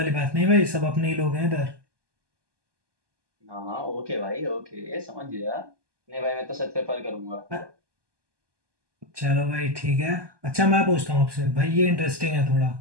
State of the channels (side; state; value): left; late; 1.2 ms